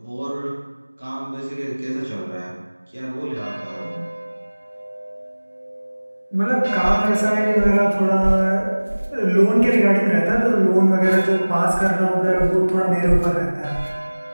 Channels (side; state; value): both; inverted; correlation -1.00